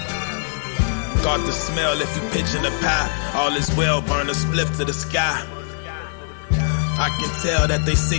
Got the smell if you pitching a pie. All is well, burn a spliff to the sky. I can tell that they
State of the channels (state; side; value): silent; right; digital silence